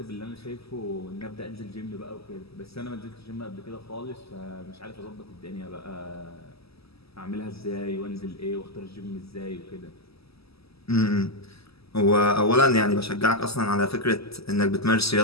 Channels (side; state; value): right; late; 0.77 ms